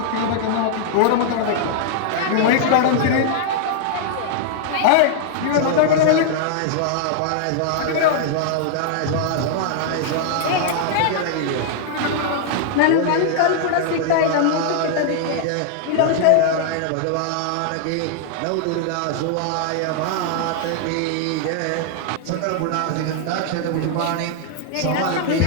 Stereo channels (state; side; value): different; both; correlation -0.01